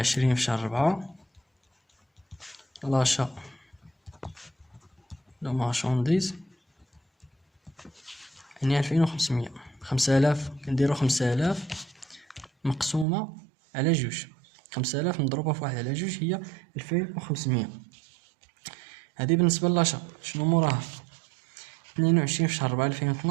في شهر 4 لاشا لو مارشانديز يعني 2500. 5000 كنديرو 5000 مقسومة على جوج، 5000 مضروبة في واحد على جوج هي 2500. هذه بالنسبة لاشا. شنو موراها؟ 22 في شهر 4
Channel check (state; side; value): drops out; left; at 13.1 s